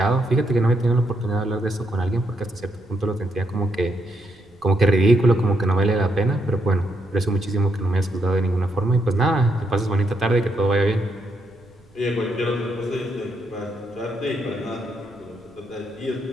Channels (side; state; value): right; noise; rumble, 30 dB below the sound